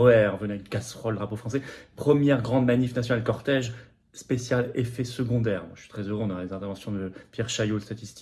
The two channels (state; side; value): identical; both; correlation 1.00